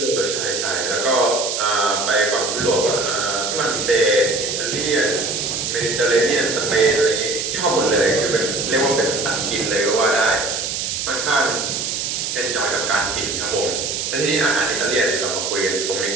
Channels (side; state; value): right; noise; hiss, 2 dB below the sound